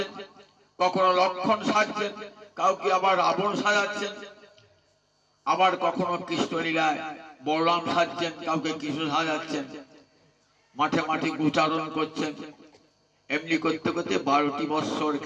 কখনো লক্ষণ সাজছেন, কাউকে আবার রাবণ সাজাচ্ছেন, আবার কখনো কৃষ্ণলীলায় বলরাম সাজছেন, কাউকে কৃষ্ণ সাজাচ্ছেন, মাঠে মাঠে উচ্চারণ করছেন। এমনি করতে করতে 12টি বৎসর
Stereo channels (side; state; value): both; identical; correlation 1.00